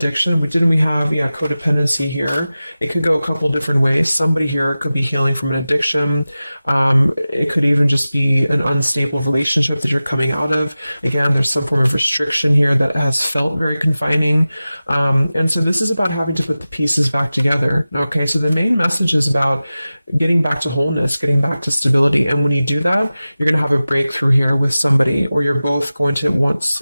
We have codependency here. It could go a couple different ways. Somebody here could be healing from an addiction. It could even just be an unstable relationship that you're coming out of. Again, there's some form of restriction here that has felt very confining. And so this is about having to put the pieces back together. Okay, so the main message is about getting back to wholeness, getting back to stability. And when you do that, you're going to have a breakthrough here with somebody, or you're both going to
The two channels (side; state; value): both; inverted; correlation -0.96